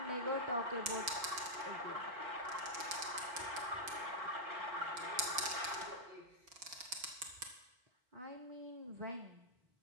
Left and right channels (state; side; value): late; left; 4.8 ms